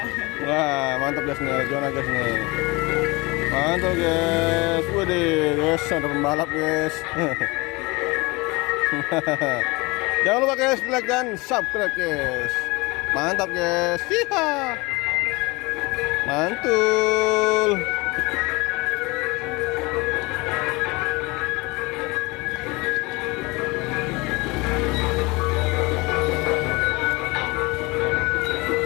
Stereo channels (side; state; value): right; quieter; 24.7 dB